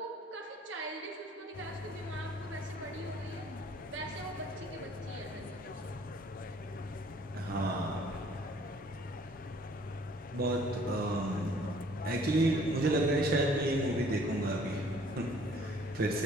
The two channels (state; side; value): normal; both; correlation 0.57